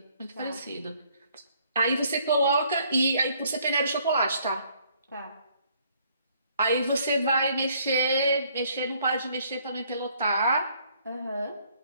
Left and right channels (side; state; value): both; inverted; correlation -0.64